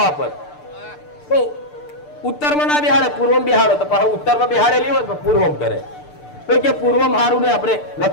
પર તો ઉત્તરમાં ના બેહાડે, પૂર્વમાં બેહાડો તો પાછું ઉત્તરમાં બેહાડેલી હોય તો પૂર્વમાં કરે. તો કે પૂર્વમાં સારું ને આપણે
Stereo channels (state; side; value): late; right; 6.7 ms